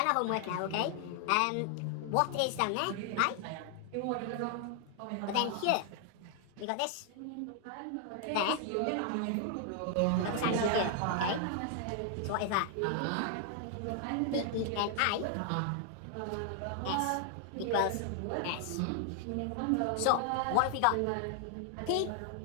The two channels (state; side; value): different; both; correlation 0.00